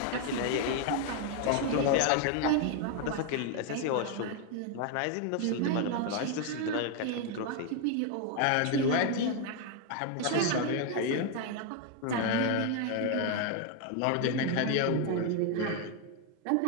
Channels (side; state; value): both; different; correlation 0.01